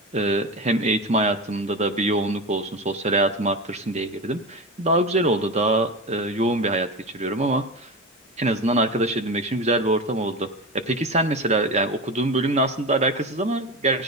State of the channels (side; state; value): both; normal; correlation 0.24